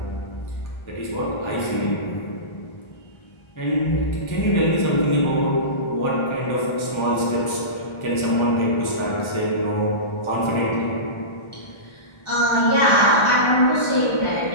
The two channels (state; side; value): late; right; 1.3 ms